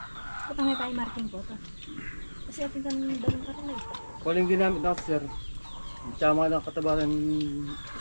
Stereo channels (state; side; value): inverted; both; correlation -1.00